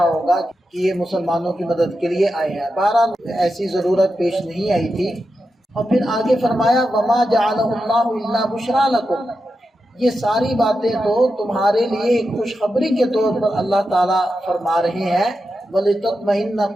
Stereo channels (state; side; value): normal; both; correlation 0.89